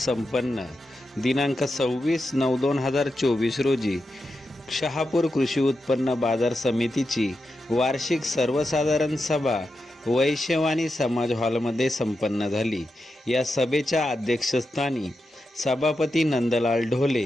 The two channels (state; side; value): normal; both; correlation 0.88